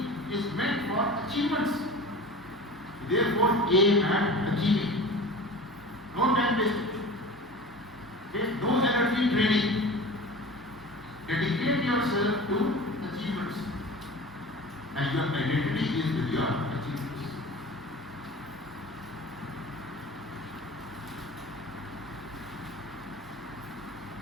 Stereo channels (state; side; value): normal; both; correlation 0.36